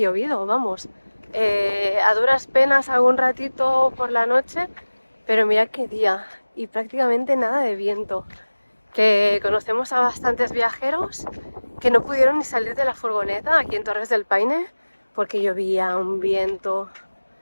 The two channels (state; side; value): inverted; both; correlation -1.00